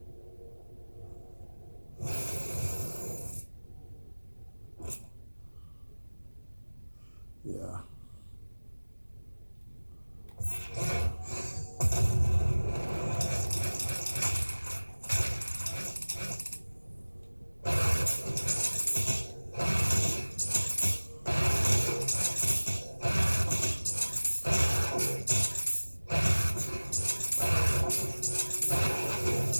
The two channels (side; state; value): both; inverted; correlation -1.00